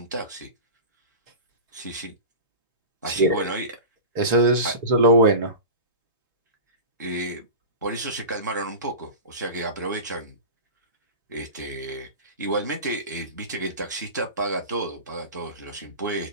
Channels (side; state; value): both; inverted; correlation -0.30